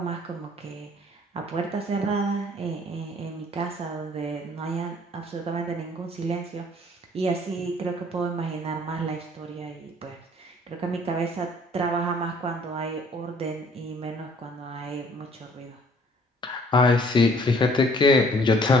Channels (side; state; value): both; normal; correlation 0.58